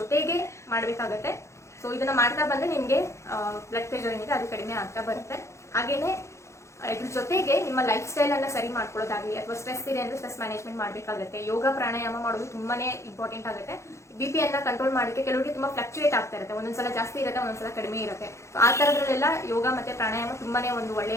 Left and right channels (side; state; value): right; late; 0.14 ms